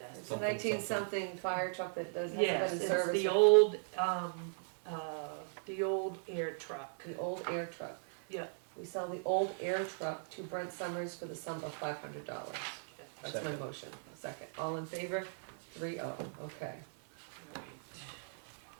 ask. It's a Something, 19-something fire truck that does, hasn't Yes, been in it's service. the old air truck. The old air truck. Yeah. We sell the old air truck to Brent Summers for the sum of $500. That's my Second. motion. A second. All in favor? 3-0. Okay. Right.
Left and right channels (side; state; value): left; silent; 53 dB below the other